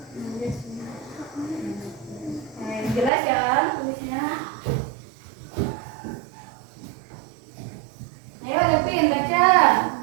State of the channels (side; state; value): left; drops out; at 3.1 s